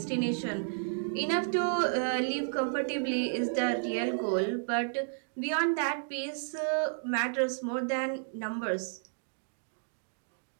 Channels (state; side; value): silent; left; digital silence